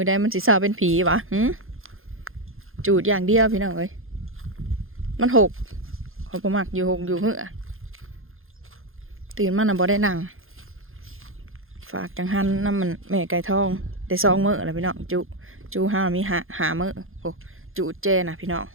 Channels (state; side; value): late; left; 0.60 ms